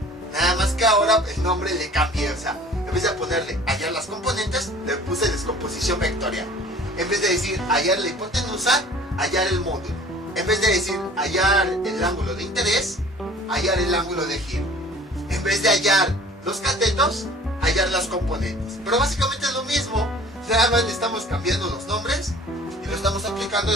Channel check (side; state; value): both; normal; correlation 0.48